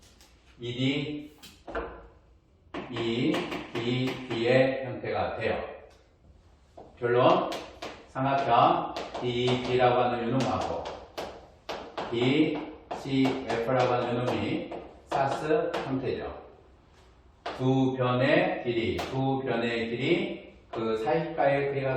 ED, EDB의 형태가 돼요. 결론, 삼각형 DEB라고 하는 요 놈하고 DCF라고 하는 요 놈이 사스 형태죠. 두 변의 길이 그 사이가의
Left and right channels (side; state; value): both; identical; correlation 1.00